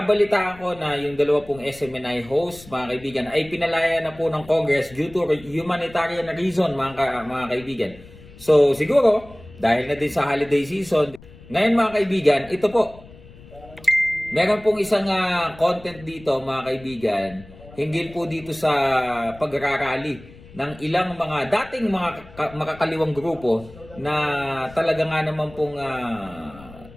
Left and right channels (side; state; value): left; noise; rumble, 20 dB below the sound